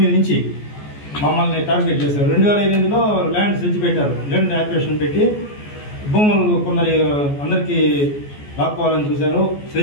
నుంచి మమ్మల్ని టార్గెట్ చేశారు. 2008లో ల్యాండ్ సెర్చ్ పెట్టారు. ల్యాండ్ యాక్విజిషన్ పెట్టి భూములు కొందరి అందరికీ లాక్కోవాలని చూశారు.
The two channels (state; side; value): late; right; 14 ms